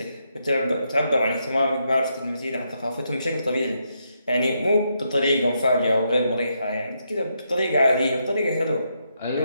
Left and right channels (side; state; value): both; inverted; correlation -0.80